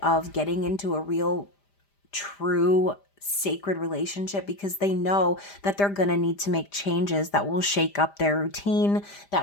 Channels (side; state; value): right; late; 5.0 ms